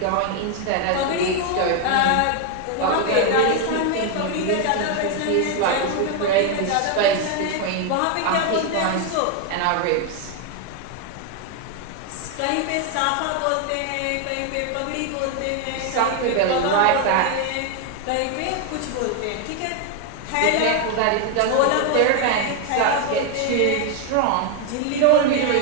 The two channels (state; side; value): different; both; correlation 0.01